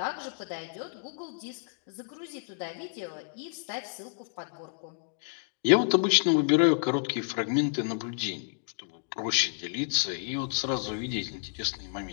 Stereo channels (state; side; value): silent; right; digital silence